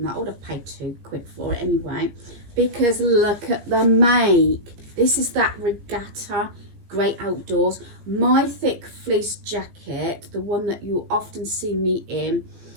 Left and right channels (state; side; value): late; left; 17 ms